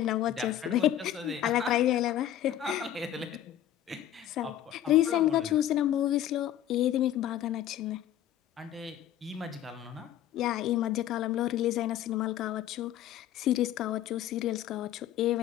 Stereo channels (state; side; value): quieter; right; 11.5 dB